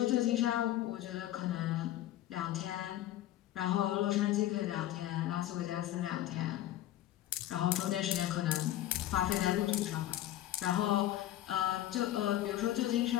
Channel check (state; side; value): quieter; right; 13.4 dB